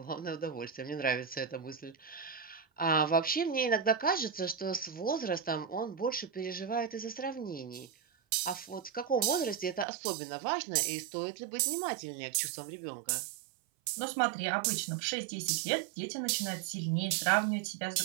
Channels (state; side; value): drops out; left; at 9.9 s